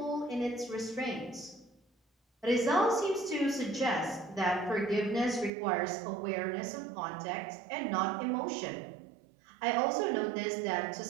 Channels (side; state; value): left; drops out; at 5.5 s